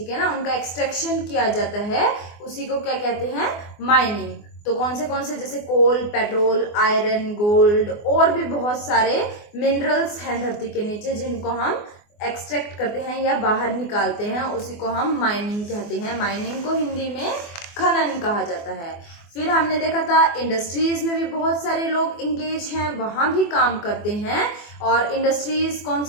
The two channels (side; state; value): right; late; 24 ms